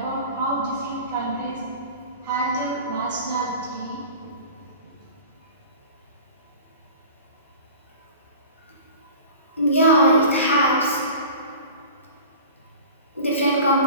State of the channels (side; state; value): both; inverted; correlation -0.38